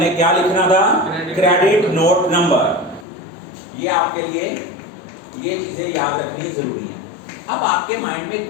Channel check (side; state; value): right; drops out; at 3.1 s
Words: क्या लिखना था? Credit note number. ये आपके लिए ये चीजें याद रखनी जरूरी है। अब आपके माइंड में